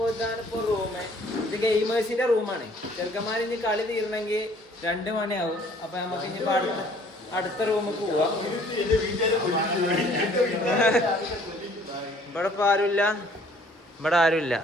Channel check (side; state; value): both; normal; correlation 0.57